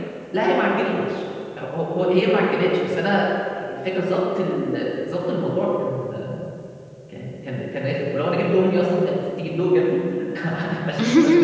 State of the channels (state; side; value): identical; both; correlation 1.00